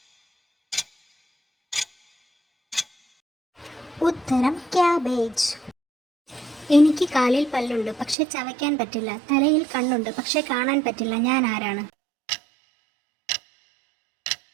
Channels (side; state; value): left; drops out; at 8.2 s